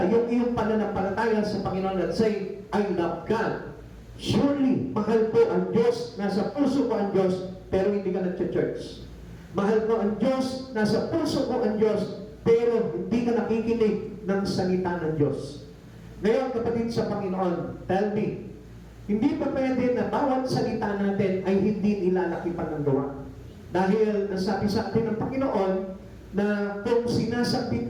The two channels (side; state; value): both; identical; correlation 1.00